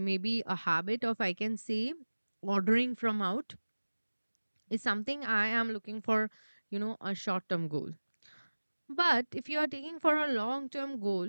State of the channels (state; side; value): inverted; both; correlation -1.00